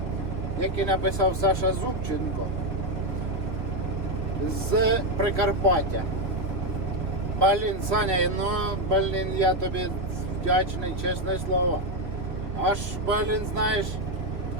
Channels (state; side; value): late; left; 2.9 ms